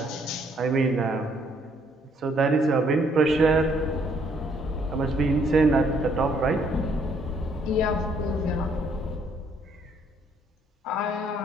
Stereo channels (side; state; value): both; normal; correlation 0.67